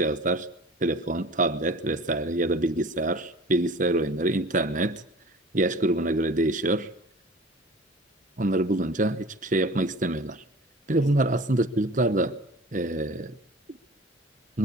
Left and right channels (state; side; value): normal; both; correlation 0.41